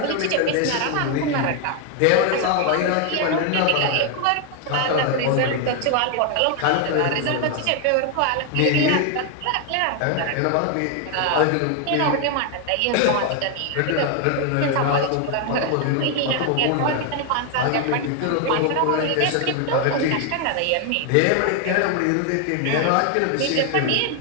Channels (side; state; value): both; different; correlation 0.01